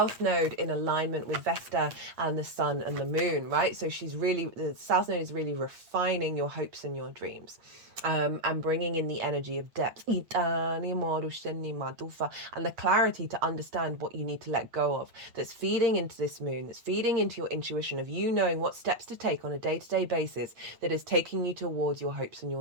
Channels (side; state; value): left; late; 8.5 ms